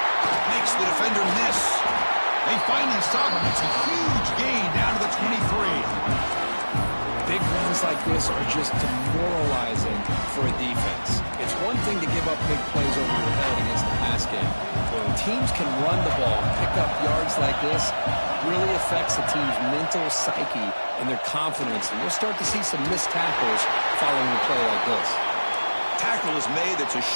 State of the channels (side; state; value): both; inverted; correlation -1.00